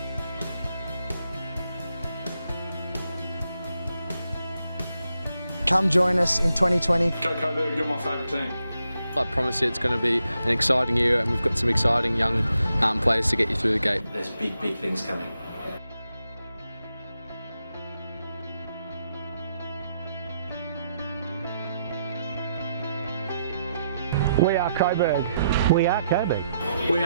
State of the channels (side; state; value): both; inverted; correlation -0.81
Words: Come join us in 2020. Go Coburg, you're my favourite team. I promise you it's going to be an exciting year, and we've got some exciting young players to get you through the gate. There's big things coming. We are Coburg. We are Coburg. We